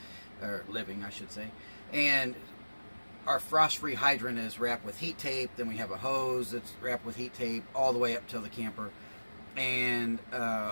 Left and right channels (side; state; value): both; inverted; correlation -1.00